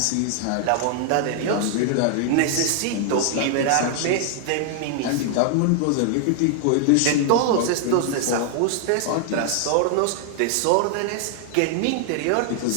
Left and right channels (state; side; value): different; both; correlation 0.00